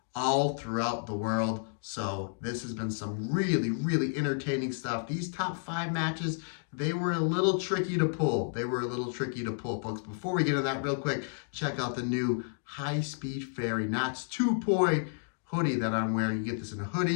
all throughout the world. So this has been some really entertaining stuff. These top 5 matches, they were a little tricky to pull. Folks. Before we get into that real quick, check out the new high-speed fairy knots 2-point hoodie that I'm wearing. You get this in a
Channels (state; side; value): silent; right; digital silence